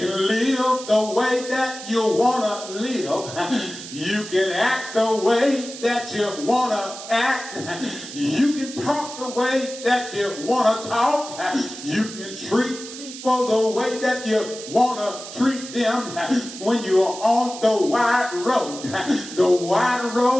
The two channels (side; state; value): right; noise; hiss, 12 dB below the sound